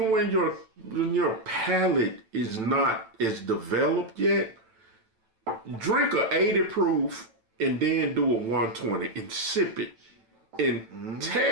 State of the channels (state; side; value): late; left; 9.0 ms